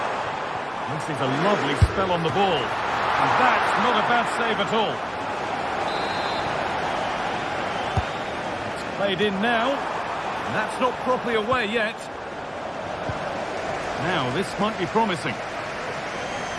fancies a lovely spell on the ball. And that's not a bad save at all. It's played in now. And that's not properly away yet. Now, this might be promising.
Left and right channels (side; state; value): both; identical; correlation 1.00